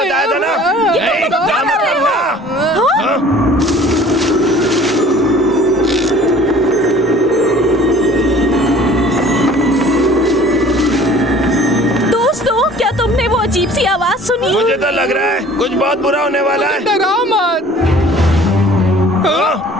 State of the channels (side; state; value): both; normal; correlation 0.49